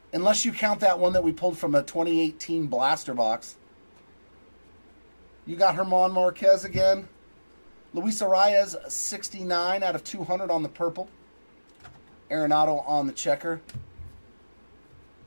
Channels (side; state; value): both; inverted; correlation -1.00